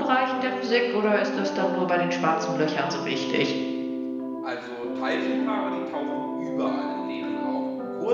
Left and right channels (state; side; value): identical; both; correlation 1.00